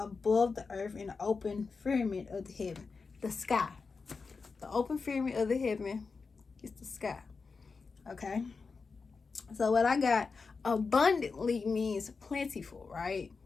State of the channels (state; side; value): quieter; right; 4.7 dB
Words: the earth in the open firmament of the heaven. The sky. The open firmament of the heaven is the sky. Okay? So what I got, abundantly means plentiful, right?